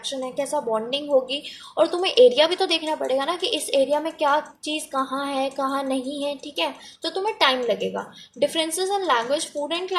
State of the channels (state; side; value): identical; both; correlation 1.00